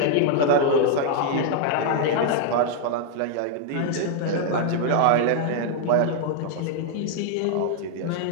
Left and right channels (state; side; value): different; both; correlation 0.00